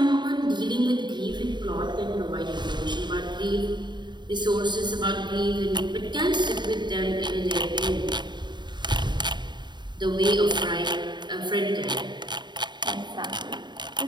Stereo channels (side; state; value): left; late; 0.22 ms